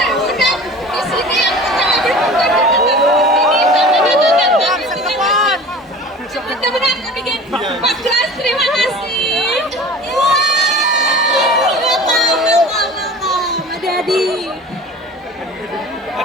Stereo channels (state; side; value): normal; both; correlation 0.40